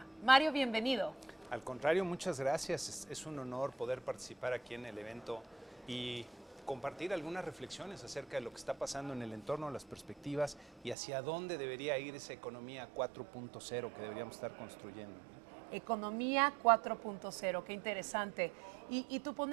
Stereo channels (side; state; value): left; drops out; at 11.0 s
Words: Mario, bienvenido. Al contrario, muchas gracias. Es un honor poder participar aquí en el evento y compartir algunas reflexiones acerca de lo que está pasando en el entorno, las perspectivas y hacia dónde debería ir esa economía 4.0 que deberíamos estar construyendo. Economía 4.0, qué interesante. Y tu